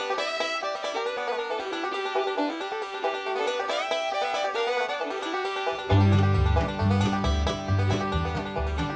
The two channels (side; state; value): both; identical; correlation 1.00